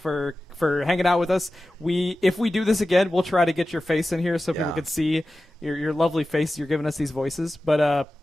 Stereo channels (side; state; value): both; normal; correlation 0.95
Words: hanging out with us. If we do this again, we'll try to get your face in here so people can see your lovely face. You're giving us these voices. But